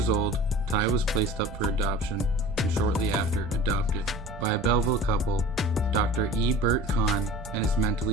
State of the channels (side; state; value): both; normal; correlation 0.41